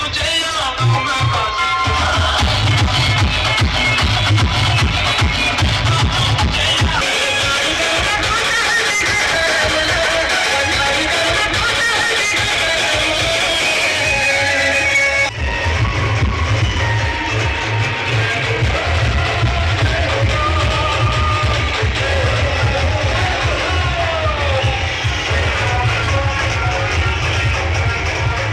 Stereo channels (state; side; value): identical; both; correlation 1.00